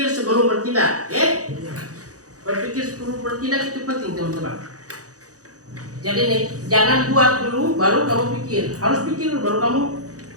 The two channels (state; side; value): late; left; 0.67 ms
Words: sebelum bertindak, Berpikir sebelum bertindak itu penting, teman-teman. Jadi nih, jangan buat dulu baru kamu pikir. Harus pikir dulu baru kamu